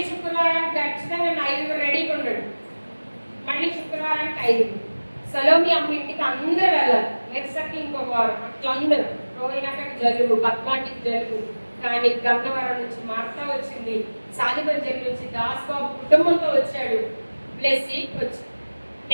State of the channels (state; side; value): inverted; both; correlation -1.00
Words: శుక్రవారానికి ఖచ్చితంగా 5 రెడీగా ఉన్నాడు. మళ్ళీ శుక్రవారానికి 5. సలోమి అమ్మ ఇంటికి అందరూ వెళ్ళాలి. నెక్స్ట్ ఇంకొక వారం అట్లా అందరూ. రోహిణాకి జలుబు, పద్మాటికి జలుబు. కానీ గన్నవరం నుంచి మార్తా వచ్చింది, సాదిబంజర్ నుంచి దాస్ బాబు కుటుంబంతో వచ్చాడు. బ్లెస్సి వచ్చి